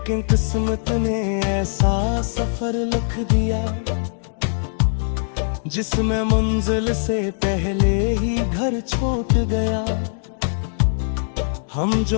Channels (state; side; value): silent; right; digital silence